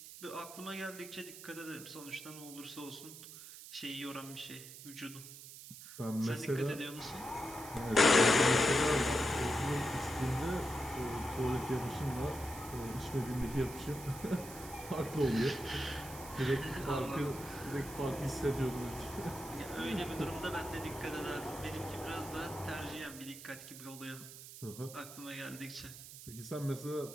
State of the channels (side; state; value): right; noise; hiss, 14 dB below the sound